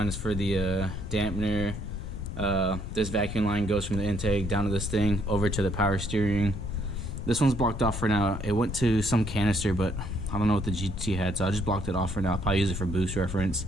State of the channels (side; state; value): left; noise; rumble, 7 dB below the sound